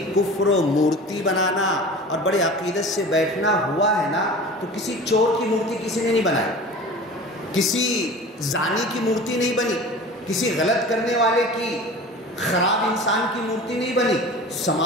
کفر و مورتی بنانا اور بڑے عقیدت سے بیٹھنا ہوا ہے نا، تو کسی چور کی مورتی کسی نے نہیں بنائی، کسی زانی کی مورتی نہیں بنی، کسی غلط کرنے والے کی، خراب انسان کی مورتی نہیں بنی،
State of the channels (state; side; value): normal; both; correlation 0.38